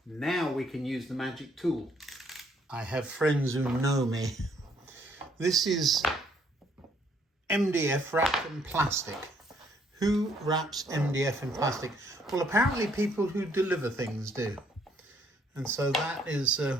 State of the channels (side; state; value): both; normal; correlation 0.67